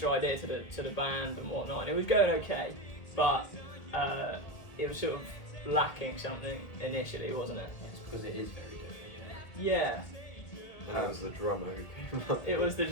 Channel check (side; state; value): right; late; 1.8 ms